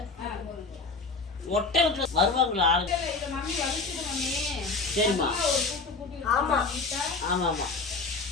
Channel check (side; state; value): right; quieter; 4.0 dB